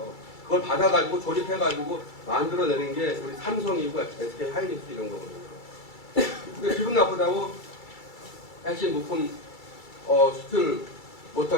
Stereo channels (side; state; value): right; late; 2.3 ms